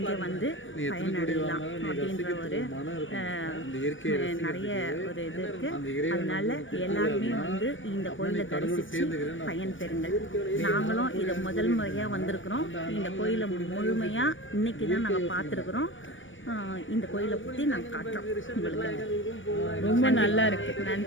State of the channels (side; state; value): right; late; 0.56 ms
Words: வந்து பயனடையலாம் அப்படின்ற ஒரு நிறைய ஒரு இது இருக்குது. அதனால் எல்லாருமே வந்து இந்த கோயிலை தரிசித்து பயன் பெறுங்கள். நாங்களும் இதை முதல் முறையாக வந்திருக்கிறோம். இந்த கோயிலை முழுமையாக இன்றைக்கி தான் நாங்கள் பார்த்துருக்குறோம். இந்த கோயிலை பற்றி நாங்கள் காட்டுறோம் உங்களுக்கு. ரொம்ப நல்லா இருக்குது.